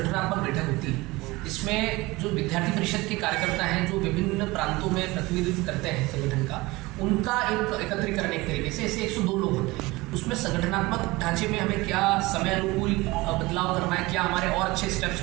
बैठक होती है। इसमें जो विद्यार्थी परिषद के कार्यकर्ता हैं, जो विभिन्न प्रांतों में प्रतिनिधित्व करते हैं संगठन का, उनका एक एकत्रीकरण एक तरीके से, ऐसे 102 लोग होते हैं। उसमें संगठनात्मक ढांचे में हमें क्या समय अनुकूल बदलाव करना है, क्या हमारे और अच्छे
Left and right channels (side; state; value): left; quieter; 21.5 dB